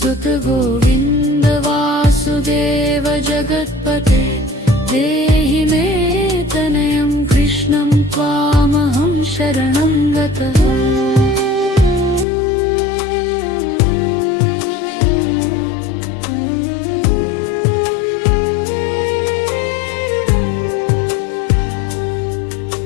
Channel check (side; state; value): right; drops out; at 12.2 s